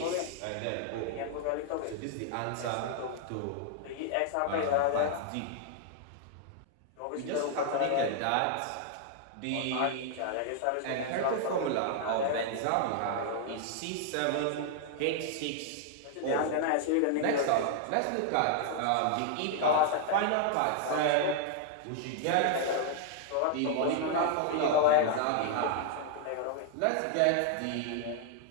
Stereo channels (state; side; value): different; both; correlation 0.00